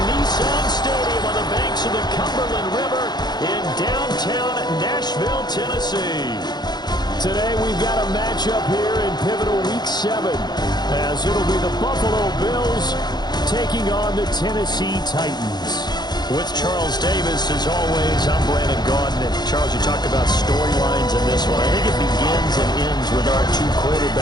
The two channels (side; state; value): right; late; 0.20 ms